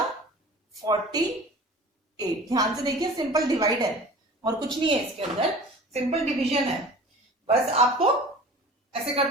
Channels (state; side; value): normal; both; correlation 0.41